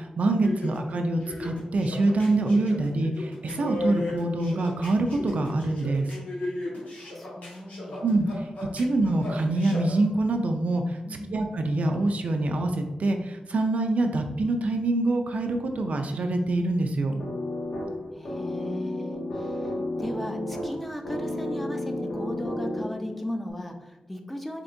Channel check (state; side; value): normal; both; correlation 0.87